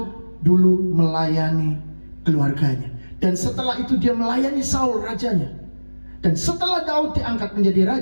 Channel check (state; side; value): inverted; both; correlation -1.00